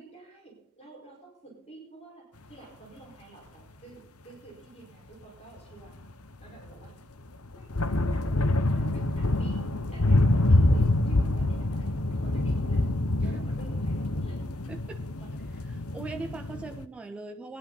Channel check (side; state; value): both; normal; correlation 0.81